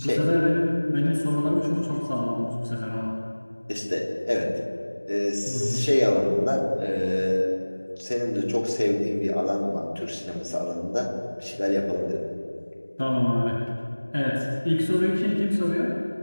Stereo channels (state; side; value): inverted; both; correlation -1.00